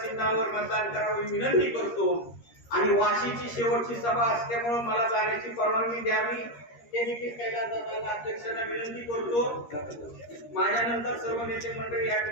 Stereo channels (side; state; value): right; late; 13 ms